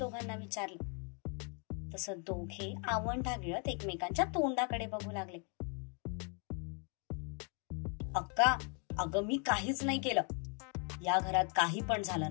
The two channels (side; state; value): right; quieter; 38.2 dB